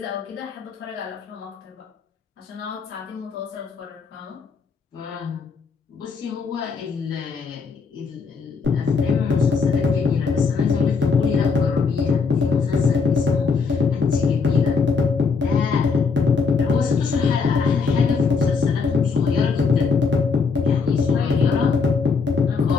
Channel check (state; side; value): quieter; right; 5.2 dB